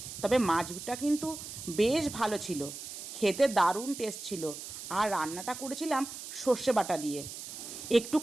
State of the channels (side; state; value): right; noise; hiss, 10 dB below the sound